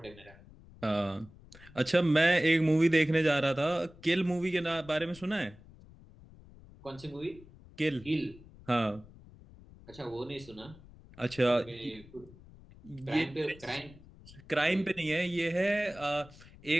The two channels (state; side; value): noise; left; rumble, 21 dB below the sound